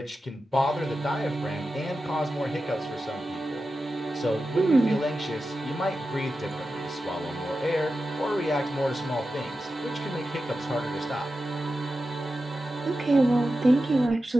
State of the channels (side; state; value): both; normal; correlation 0.92